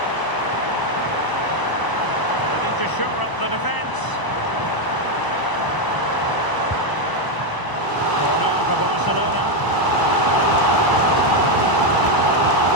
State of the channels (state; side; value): late; right; 1.0 ms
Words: They need to shore up the defence. Corner for Barcelona.